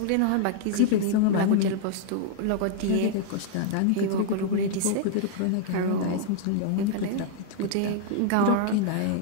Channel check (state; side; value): different; both; correlation -0.01